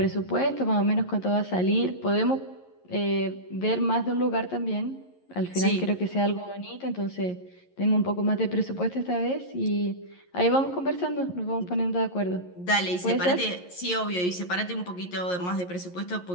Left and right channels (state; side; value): late; right; 11 ms